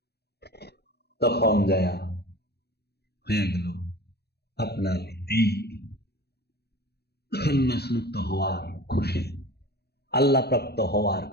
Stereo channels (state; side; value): late; right; 0.47 ms